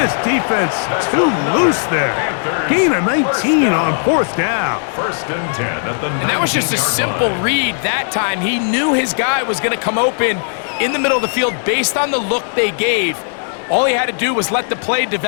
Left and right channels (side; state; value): right; silent; digital silence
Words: defense too loose there. Gain of 19 on 4th down. 1st and 10 at the 19-yard line. And that was just a simple read that time. He knew his guy was going to come open in the middle of the field based on the look they gave. All he had to do was let the play